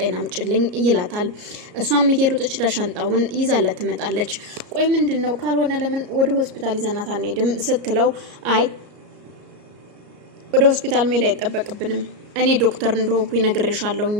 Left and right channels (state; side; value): late; left; 34 ms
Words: አምጪልኝ ይላታል። እሷም እየሮጠች ሻንጣውን ይዛለት ትመጣለች። ቆይ ምንድነው? ካልሆነ ለምን ወደ ሆስፒታል ይዘናት አንሄድም? ስትለው አይ ወደ ሆስፒታል መሄድ አይጠበቅብንም፣ እኔ ዶክተር እንደሆንኩኝ ነግሬሻለሁኝ